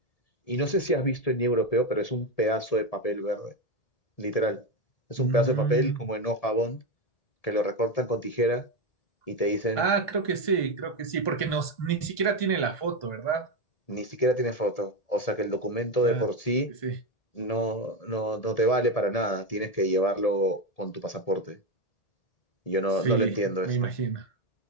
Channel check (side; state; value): right; late; 1.7 ms